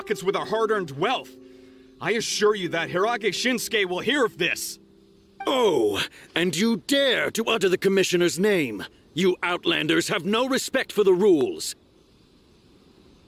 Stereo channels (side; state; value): both; identical; correlation 1.00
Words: with our hard-earned wealth. I assure you that Hirage Shinsuke will hear of this. Oh, and you dare to utter the commissioner's name. You outlanders have no respect for the rules.